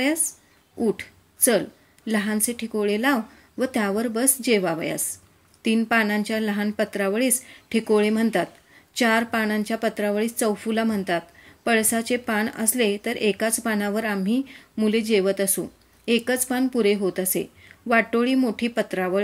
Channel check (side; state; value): both; identical; correlation 1.00